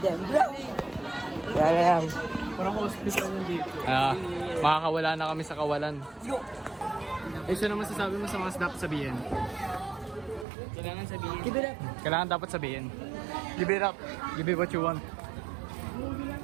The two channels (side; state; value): left; drops out; at 10.5 s